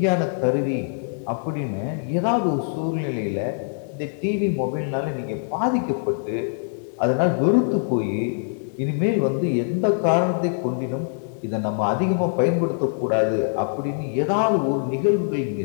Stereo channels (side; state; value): right; silent; digital silence